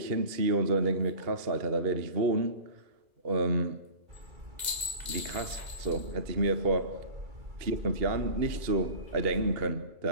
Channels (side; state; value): left; late; 2.0 ms